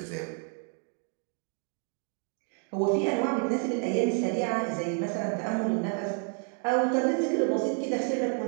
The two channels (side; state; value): left; quieter; 38.9 dB